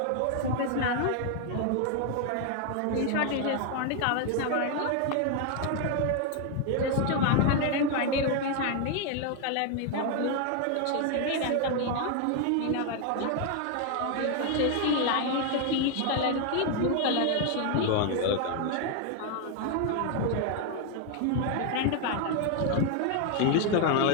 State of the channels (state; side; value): different; both; correlation 0.00